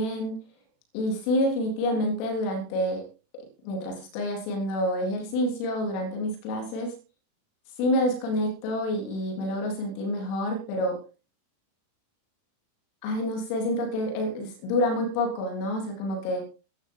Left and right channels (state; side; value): late; right; 36 ms